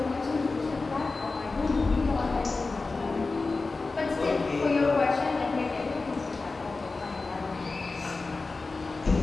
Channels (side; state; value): right; quieter; 3.8 dB